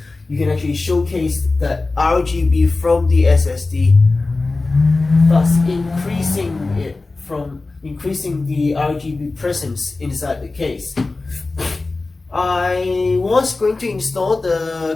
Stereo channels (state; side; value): quieter; right; 3.5 dB